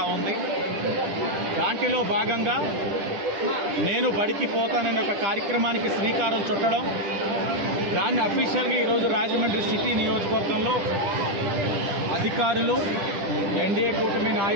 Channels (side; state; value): left; late; 10 ms